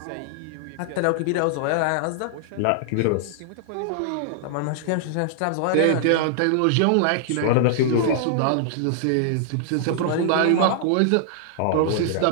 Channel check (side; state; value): both; different; correlation -0.01